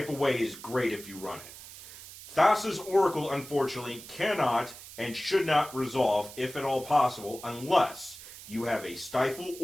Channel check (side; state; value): right; noise; hiss, 15 dB below the sound